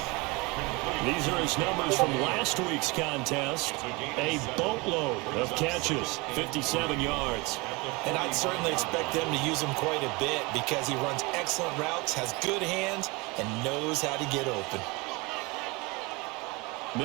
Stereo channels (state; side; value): quieter; left; 25.9 dB